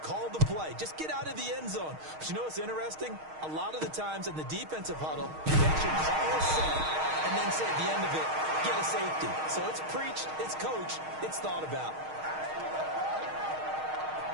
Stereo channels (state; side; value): late; left; 6.4 ms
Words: the play. Just get out of the end zone. But you know what's interesting? A lot of the times in the defensive huddle, they actually call a set and then say at the end of it, get a safety. So it's preached, it's coached, it's thought about.